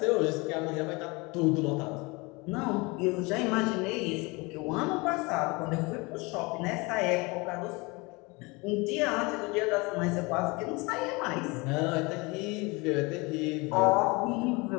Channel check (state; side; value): quieter; right; 26.1 dB